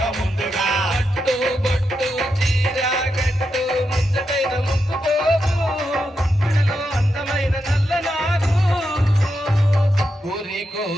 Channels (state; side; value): normal; both; correlation 0.86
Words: ముందుగా పట్టు బొట్టు చీర గట్టు ముచ్చటైన ముక్కుపోవు గుడిలో అందమైన నల్లనాగు ఊరి